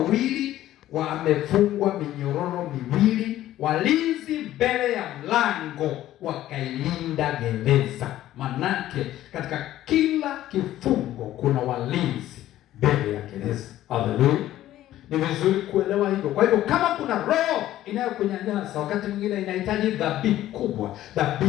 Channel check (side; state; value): right; quieter; 13.7 dB